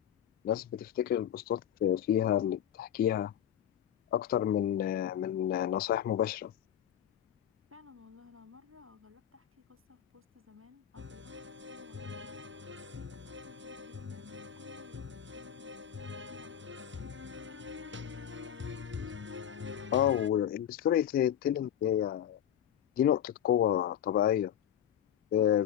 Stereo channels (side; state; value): right; quieter; 10.2 dB